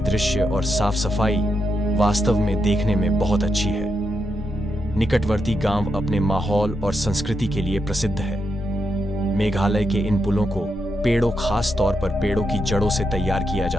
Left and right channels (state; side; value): normal; both; correlation 0.83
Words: और साफ सफाई वास्तव में देखने में बहुत अच्छी है। निकटवर्ती गांव अपने माहौल और संस्कृति के लिए प्रसिद्ध है। मेघालय के इन पुलों को खास तौर पर पेड़ों की जड़ों से तैयार किया